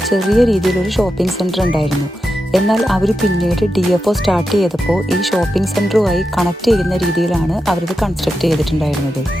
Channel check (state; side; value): normal; both; correlation 0.88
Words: ചെറിയ രീതിയിലൊരു ഷോപ്പിംഗ് സെൻറ്റർ ഉണ്ടായിരുന്നു. എന്നാൽ അവർ പിന്നീട് DFO സ്റ്റാർട്ട് ചെയ്തപ്പോൾ ഈ ഷോപ്പിംഗ് സെൻറ്ററുമായി കണക്ട് ചെയ്യുന്ന രീതിയിലാണ് അവരിത് കൺസ്ട്രക്ട് ചെയ്തിട്ടുണ്ടായിരുന്നത്.